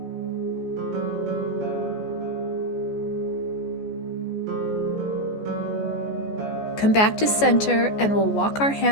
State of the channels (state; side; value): late; right; 14 ms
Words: Come back to center and we'll walk our